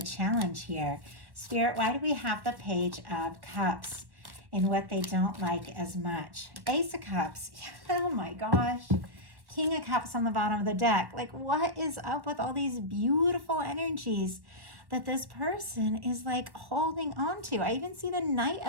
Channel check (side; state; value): left; late; 1.1 ms